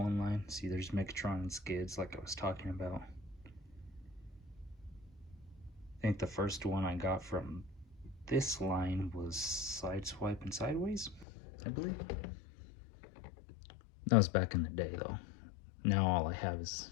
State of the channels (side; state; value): right; drops out; at 11.2 s